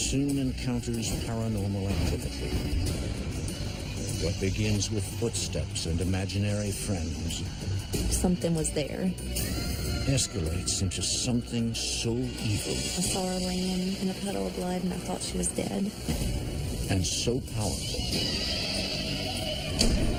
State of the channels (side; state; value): both; identical; correlation 1.00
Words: encounters paranormal activity. What begins with footsteps and imaginary friends Something was there. escalates into something so evil I saw her laying in a puddle of blood and I thought she was dead. and so powerful